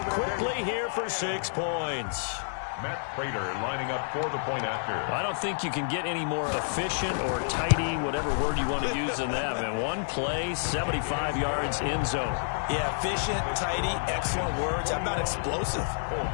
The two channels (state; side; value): silent; right; digital silence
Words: quickly here for 6 points. Matt Prater lining up for the point after. I don't think you can get any more efficient or tidy, whatever word you want to use in that. And one play, 75 yards in zone. Yeah, efficient, tidy, excellent words. How about explosive?